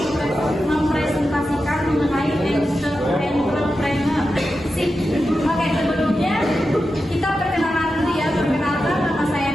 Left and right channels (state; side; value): normal; both; correlation 0.90